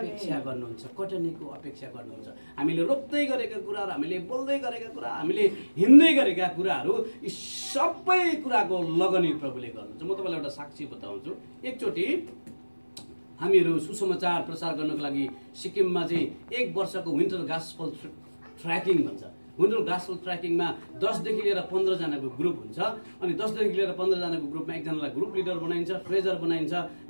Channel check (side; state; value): both; inverted; correlation -1.00